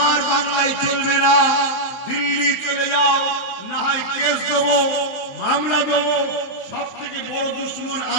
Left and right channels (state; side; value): late; right; 23 ms